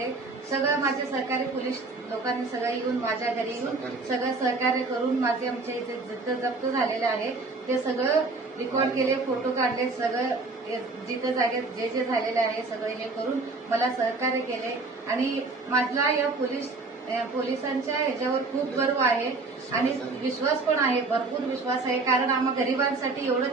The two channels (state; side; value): quieter; left; 3.7 dB